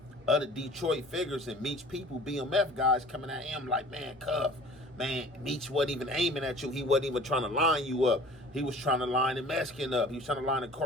other Detroit figures and Meech people, BMF guys, coming at him like, man, Cuff, man, Meech wasn't even aiming at you. He wasn't even trying to line you up. He was trying to line the Mexican up. He was trying to line the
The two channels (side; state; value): both; normal; correlation 0.46